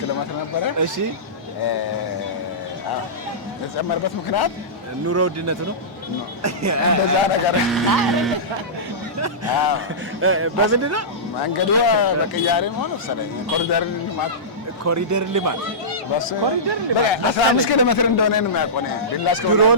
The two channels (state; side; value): normal; both; correlation -0.18